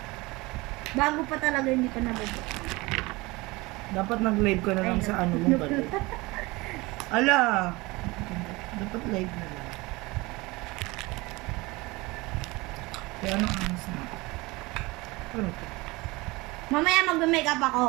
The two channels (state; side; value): quieter; left; 22.8 dB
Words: Bago pa talaga, hindi pa nabubuk. Dapat nag-live ka na lang Ay, sa ano mong balik. Ala! Dapat live na lang. Kaya ano angas na? Ano to? Mamaya mag-makeup ako.